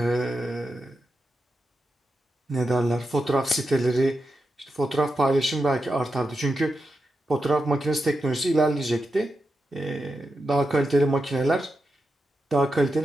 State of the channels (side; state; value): both; normal; correlation 0.88